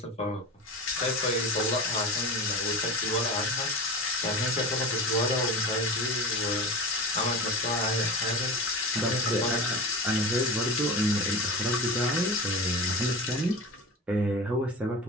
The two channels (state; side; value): normal; both; correlation 0.28